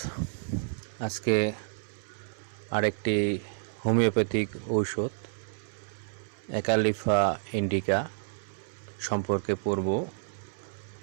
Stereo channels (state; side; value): silent; left; 58 dB below the other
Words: আজকে আরেকটি হোমিওপ্যাথিক ঔষধ অ্যাকালিফা ইন্ডিকা সম্পর্কে পড়ব।